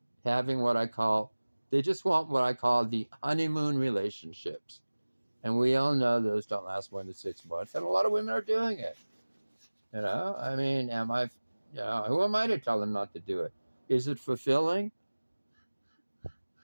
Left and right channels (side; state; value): both; inverted; correlation -1.00